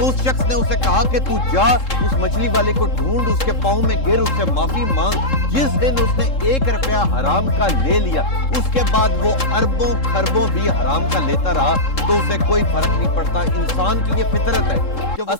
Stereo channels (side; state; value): right; late; 3.7 ms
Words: उस शख्स ने उसे कहा कि तू जा उस मछली वाले को ढूंढ, उसके पांव में गिर, उससे माफी मांग। जिस दिन उसने 1 रुपया हराम का ले लिया उसके बाद वो अरबों खरबों भी हराम का लेता रहा, तो उसे कोई फर्क नहीं पड़ता। इंसान की ये फितरत है।